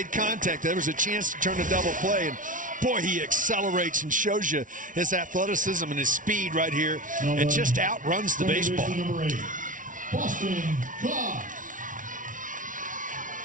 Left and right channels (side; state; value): left; late; 0.38 ms